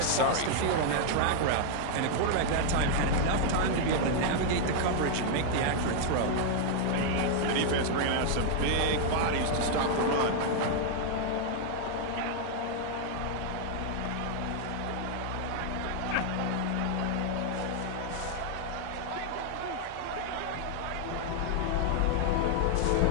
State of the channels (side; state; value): both; different; correlation 0.00